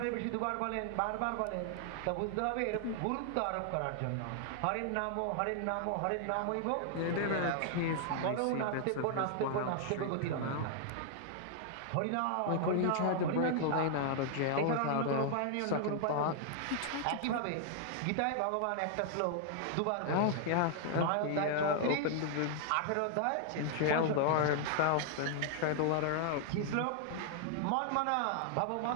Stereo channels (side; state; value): both; different; correlation -0.01